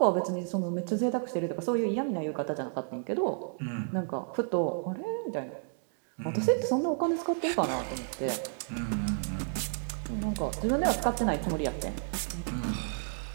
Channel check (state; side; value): silent; left; 57 dB below the other